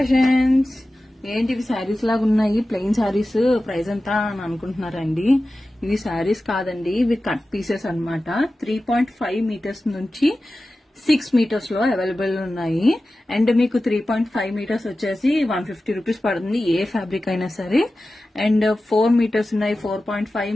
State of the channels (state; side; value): normal; both; correlation 0.94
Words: ఏంటి ఇవి శారీస్ లాగా ఉన్నాయి, ప్లెయిన్ శారీస్, ప్రైస్ ఎంత అని అనుకుంటున్నారండి. ఇవి శారీస్ కాదండి, ఇవి కట్ పీసెస్ అన్నమాట. 3.5 మీటర్స్ నుంచి 6 మీటర్స్ లో అవైలబుల్ ఉన్నాయి. అండ్ మీకు 3.5 మీటర్స్ వచ్చేసి 150 రూపీస్ పడుతుంది, ఏ ఫ్యాబ్రిక్ అయినా సరే. అండ్ 4 మీటర్స్ ఉన్నాయి, 4.5